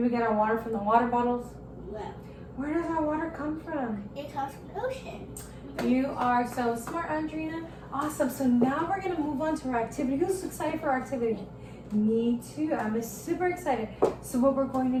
we get our water from the water bottles? No. Where does our water come from? It comes from the ocean. You are so smart, Andrina. Awesome. So now we're going to move on to our activity. Who's excited for our activity? Me too. I'm super excited. So what we're going to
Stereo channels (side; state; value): both; identical; correlation 1.00